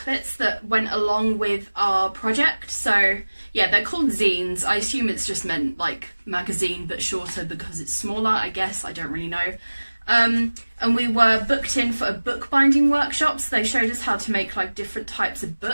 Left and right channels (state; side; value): inverted; both; correlation -1.00